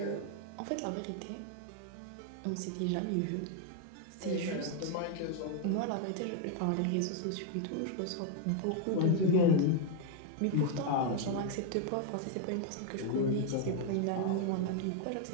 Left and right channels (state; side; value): different; both; correlation 0.00